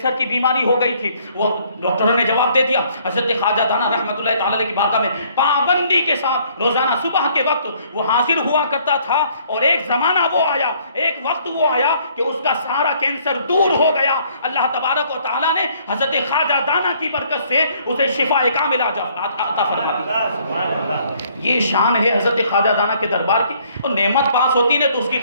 کی بیماری ہو گئی تھی، وہ ڈاکٹروں نے جواب دے دیا حضرت خواجہ دانا رحمۃ اللہ تعالی علیہ کی بارگاہ میں پابندی کے ساتھ روزانہ صبح کے وقت وہ حاضر ہوا کرتا تھا. اور ایک زمانہ وہ آیا، ایک وقت وہ آیا کہ اس کا سارا کینسر دور ہو گیا. اللہ تبارک و تعالیٰ نے حضرت خواجہ دانا کی برکت سے اسے شفا کاملہ عطا فرما دی. یہ شان ہے حضرت خواجہ دانا کے دربار کی. اور نعمت پاس ہوتی ہے تو اس کی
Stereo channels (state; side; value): inverted; both; correlation -0.63